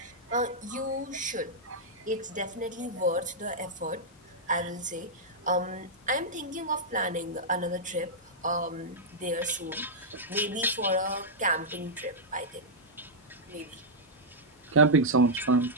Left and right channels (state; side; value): normal; both; correlation -0.08